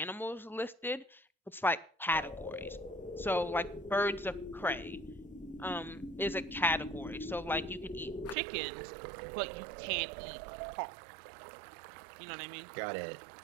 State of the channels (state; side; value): drops out; left; at 8.3 s